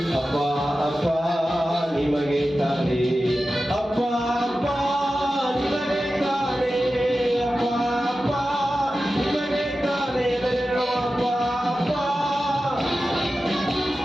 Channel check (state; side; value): normal; both; correlation 0.93